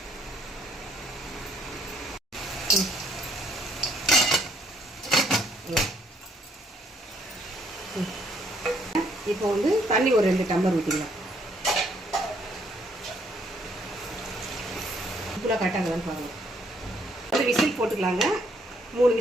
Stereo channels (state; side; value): normal; both; correlation 0.68